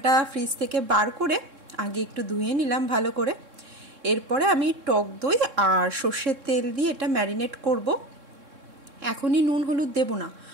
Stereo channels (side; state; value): left; late; 3.6 ms